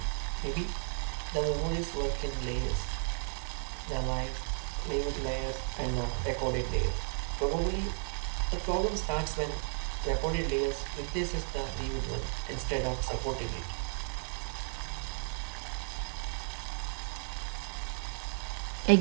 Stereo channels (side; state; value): left; silent; 55 dB below the other